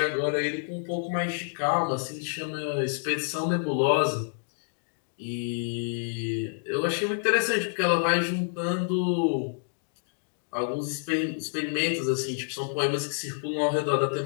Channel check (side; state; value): right; silent; digital silence